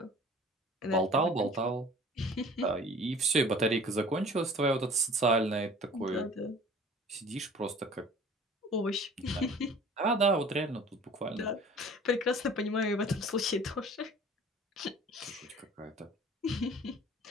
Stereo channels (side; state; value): both; normal; correlation 0.47